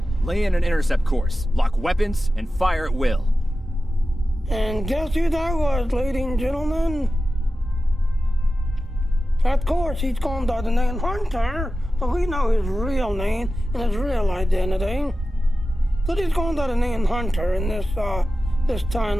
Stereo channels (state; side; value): normal; both; correlation 0.93